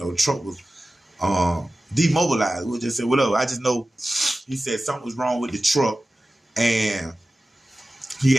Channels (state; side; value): normal; both; correlation 0.95